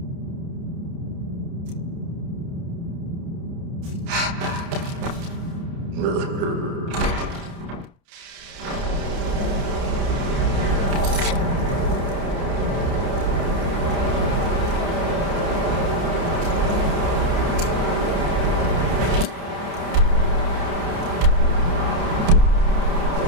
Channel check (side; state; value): left; late; 29 ms